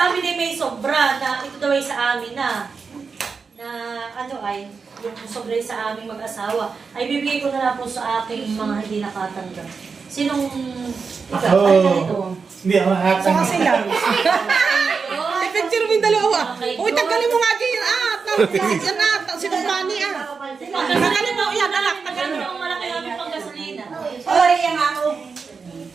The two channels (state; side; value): quieter; left; 5.1 dB